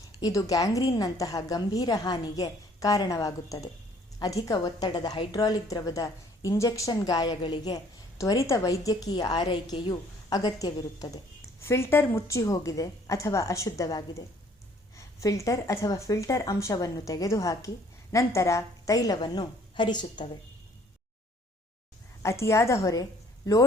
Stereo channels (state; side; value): normal; both; correlation 0.59